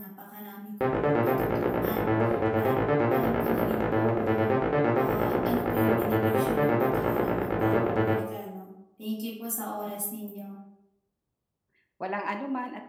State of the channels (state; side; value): identical; both; correlation 1.00